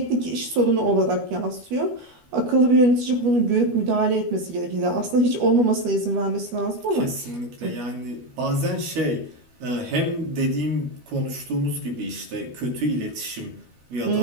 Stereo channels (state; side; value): late; left; 13 ms